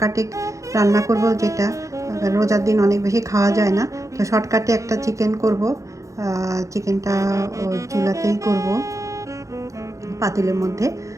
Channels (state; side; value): late; left; 0.15 ms